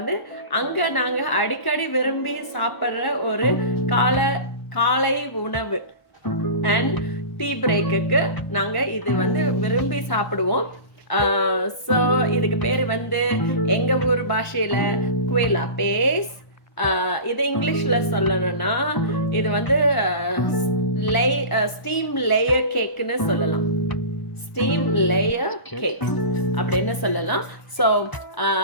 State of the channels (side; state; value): right; late; 1.1 ms